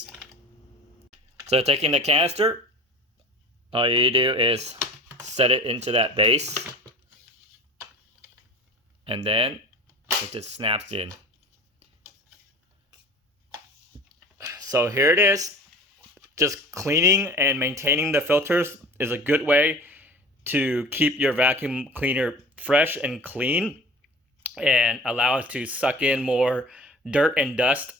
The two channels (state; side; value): normal; both; correlation 0.41